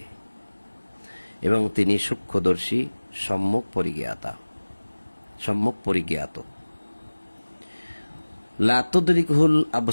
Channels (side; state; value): both; inverted; correlation -1.00